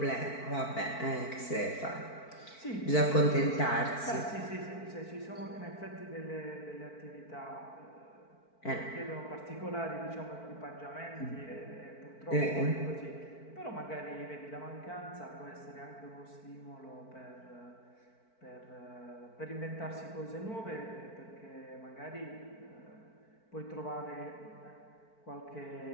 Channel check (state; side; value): late; right; 4.5 ms